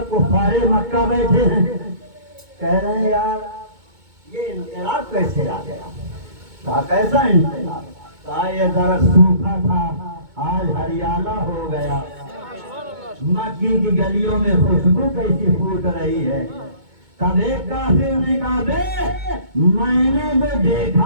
कुफारे मक्का बैठे हैं, कह रहे हैं यार ये इंकलाब कैसे आ गया? कहा कैसा इंकलाब? कहा ये जरा सूखा था आज हरियाला हो गया। मक्की की गलियों में खुशबू कैसी फूट रही है। तब एक काफिर ने कहा बे मैंने जो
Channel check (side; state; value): left; late; 2.2 ms